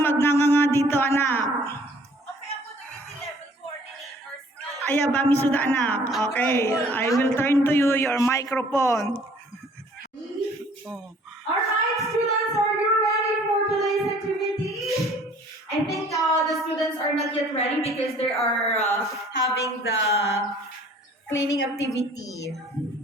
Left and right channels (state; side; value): normal; both; correlation 0.55